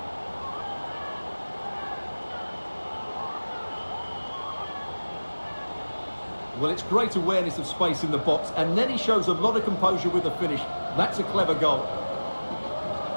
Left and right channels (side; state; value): both; inverted; correlation -1.00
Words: Well, it's great awareness of space in the box, and then he shows a lot of composure with the finish. That's a clever goal.